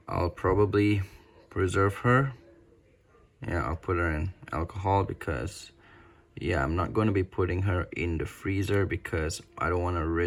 I'll probably preserve her. Yeah, I'll put her in alcohol because, yeah, I'm not going to be putting her in the freezer because I don't want to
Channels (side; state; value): both; identical; correlation 1.00